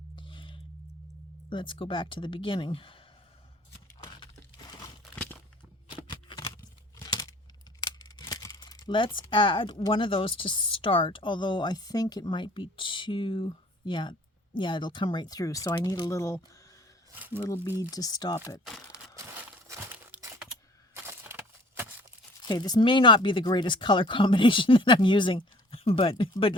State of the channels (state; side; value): normal; both; correlation 0.51